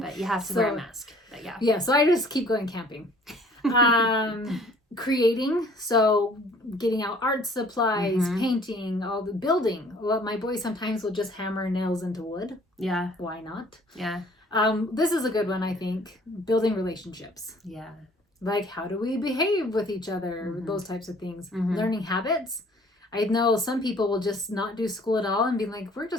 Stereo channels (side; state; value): both; normal; correlation 0.55